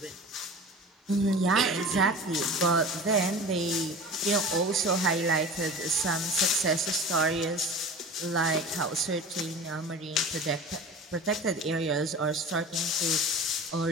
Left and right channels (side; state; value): both; normal; correlation 0.36